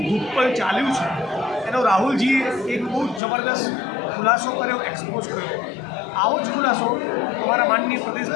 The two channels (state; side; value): drops out; right; at 3.2 s